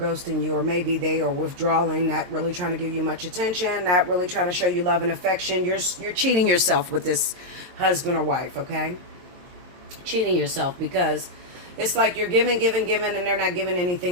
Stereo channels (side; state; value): left; late; 22 ms